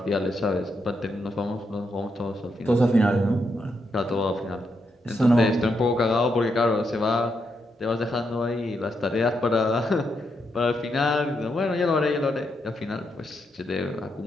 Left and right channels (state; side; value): normal; both; correlation 0.81